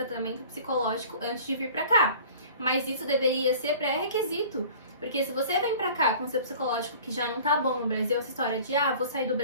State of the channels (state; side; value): inverted; both; correlation -0.45